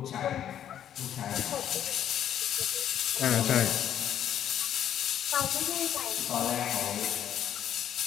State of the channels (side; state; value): right; quieter; 10.2 dB